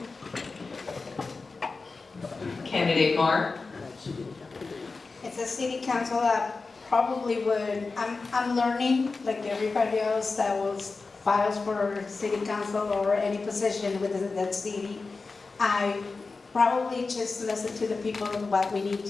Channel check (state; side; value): quieter; right; 4.1 dB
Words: Candidate Marr. It's a city council that probably would, I'm learning, like everybody else that was files for city council or any position within that city. I probably just listen to the people of what we need